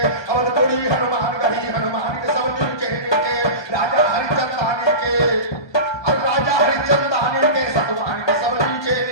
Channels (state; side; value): late; right; 1.3 ms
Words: हनुमान गढ़ी हनुमान के सब नीचे नीचे राजा हरिचंदानी के राजा हरिचंदानी के सतवान के सब नीचे